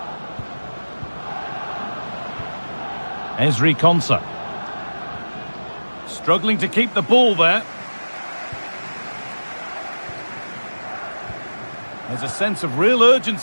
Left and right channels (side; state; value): both; inverted; correlation -1.00